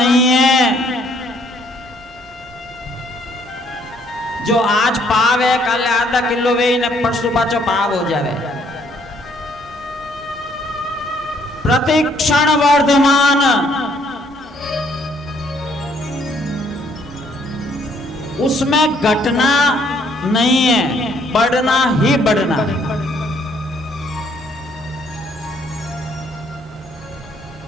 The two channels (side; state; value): right; noise; hum, 29 dB below the sound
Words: है जो आज पाव है, कल आधा किलो वे न परसों पाचो पाव हो जावे। प्रतिक्षण वर्धमान, उसमें घटना नहीं है, बढ़ना ही बढ़ना है।